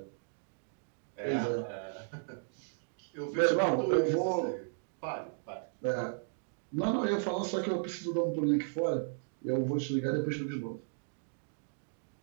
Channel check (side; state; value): left; silent; digital silence